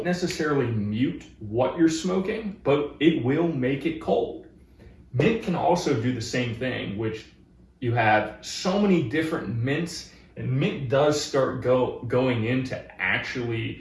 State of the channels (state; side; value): identical; both; correlation 1.00